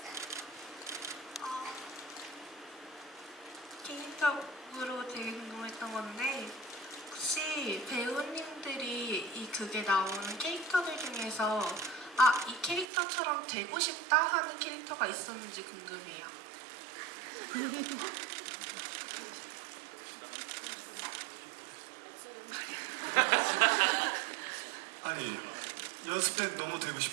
개인적으로 되게 궁금했던 건데 혹시 배우님들이 이 극에 나오는 캐릭터들 중에서 이 캐릭터처럼 되고 싶다 하는 캐릭터가 있었는지 궁금해요. 아니 연습 때 너무 되고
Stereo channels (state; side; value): drops out; left; at 12.9 s